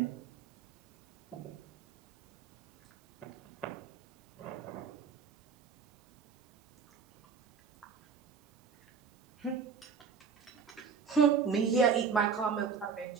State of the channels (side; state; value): left; quieter; 6.0 dB